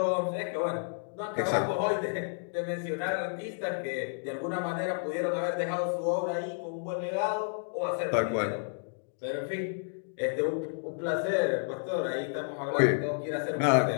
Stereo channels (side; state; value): right; silent; digital silence